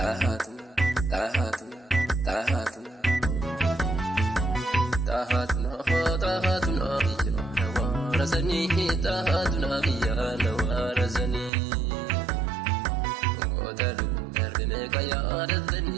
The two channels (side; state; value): left; drops out; at 11.5 s